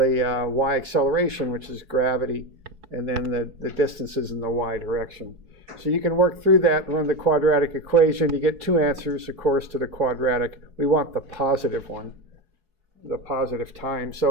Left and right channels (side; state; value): left; late; 4.7 ms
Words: y acceleration, which is gravity, and then the distances in the y direction. So you can work through that and run the quadratic equation. You get 2 answers, of course, to the quadratic. We want the positive one, the positive time.